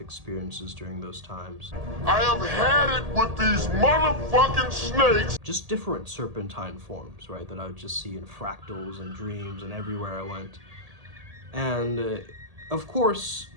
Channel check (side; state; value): left; late; 1.8 ms